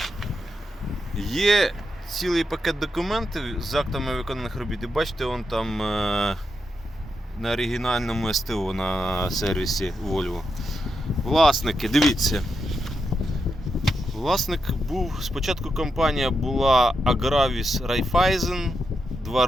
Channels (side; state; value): both; normal; correlation 0.85